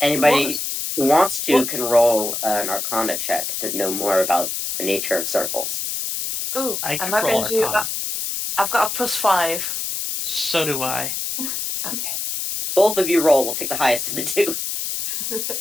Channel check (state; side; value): noise; left; hiss, 3 dB below the sound